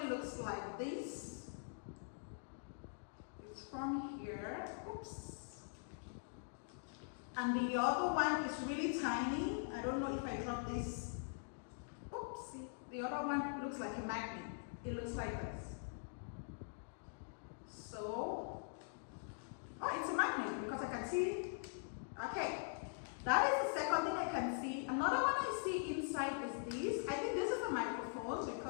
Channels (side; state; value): right; silent; digital silence